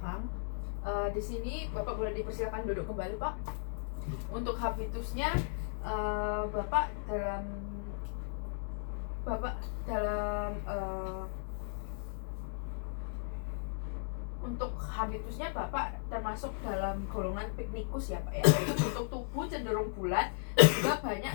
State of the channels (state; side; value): silent; right; digital silence